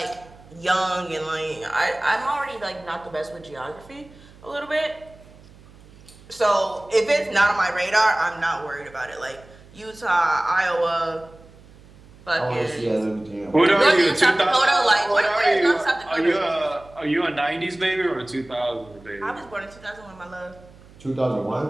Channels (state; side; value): noise; right; hum, 23 dB below the sound